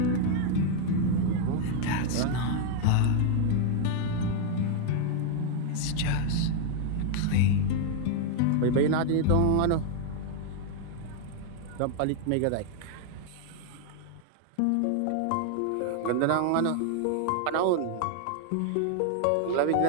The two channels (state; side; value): different; both; correlation 0.00